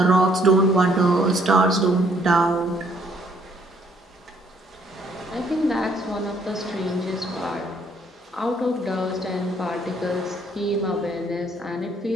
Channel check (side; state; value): both; normal; correlation 0.65